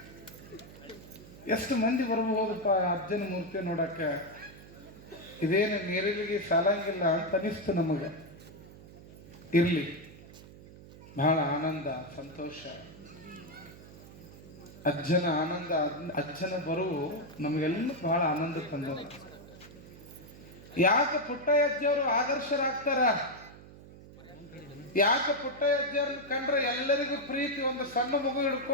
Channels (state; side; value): noise; right; hum, 18 dB below the sound